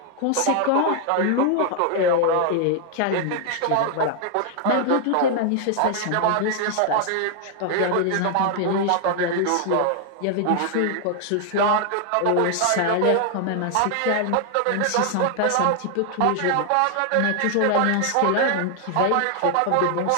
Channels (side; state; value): both; different; correlation 0.00